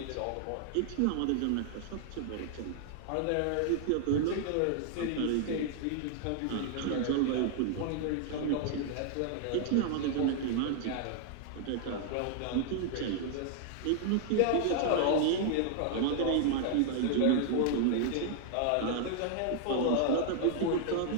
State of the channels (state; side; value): different; both; correlation 0.00